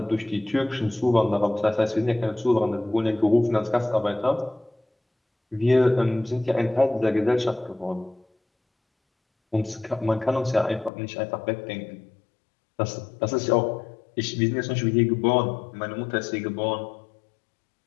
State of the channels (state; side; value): drops out; right; at 10.9 s